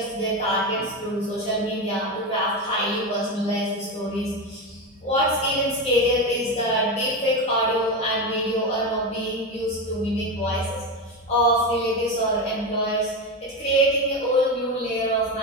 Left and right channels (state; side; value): normal; both; correlation 0.17